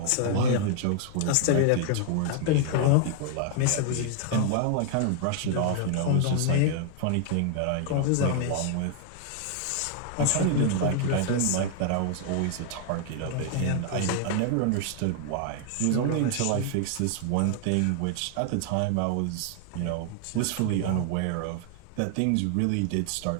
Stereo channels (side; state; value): both; different; correlation 0.00